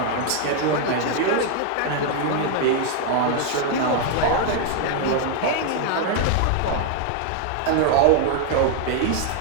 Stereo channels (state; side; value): different; both; correlation 0.00